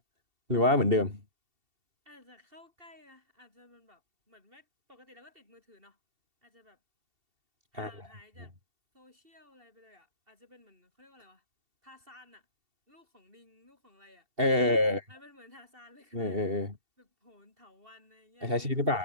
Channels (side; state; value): left; late; 2.7 ms